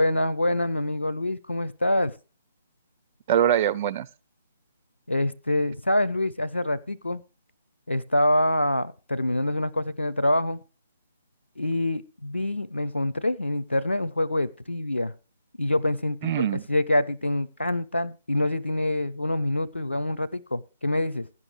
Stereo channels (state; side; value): inverted; both; correlation -0.84